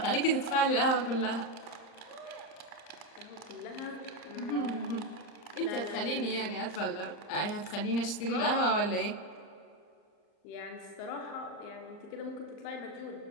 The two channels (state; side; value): late; right; 38 ms